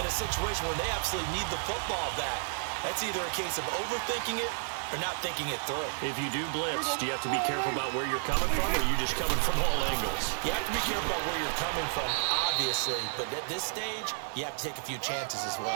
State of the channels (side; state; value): left; silent; 57 dB below the other